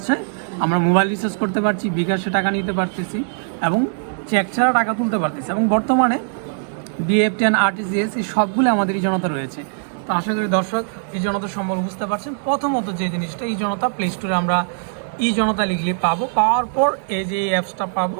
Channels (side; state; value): left; silent; digital silence